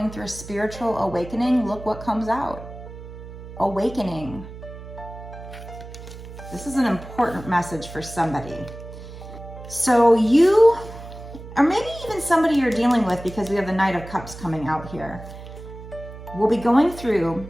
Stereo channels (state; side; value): noise; right; hum, 14 dB below the sound